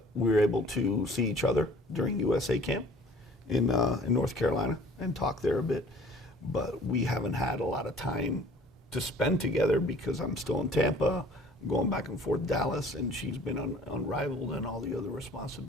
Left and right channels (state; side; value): normal; both; correlation 0.51